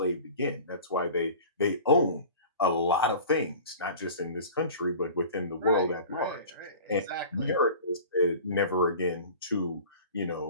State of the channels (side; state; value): both; inverted; correlation -0.41